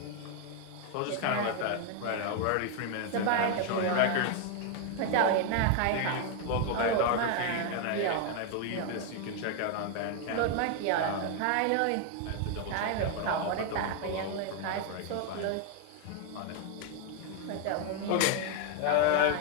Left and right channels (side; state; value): both; different; correlation 0.01